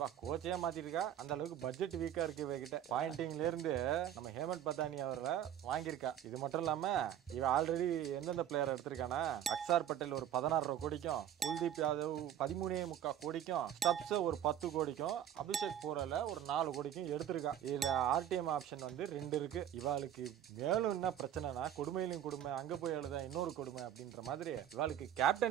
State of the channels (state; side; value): quieter; left; 10.4 dB